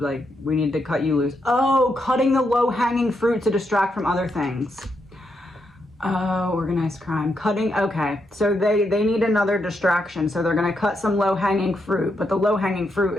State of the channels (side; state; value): both; normal; correlation 0.81